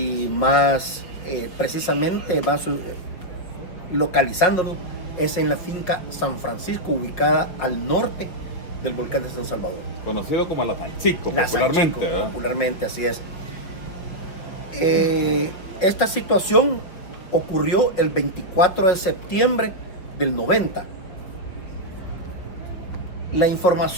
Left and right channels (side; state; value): right; late; 5.6 ms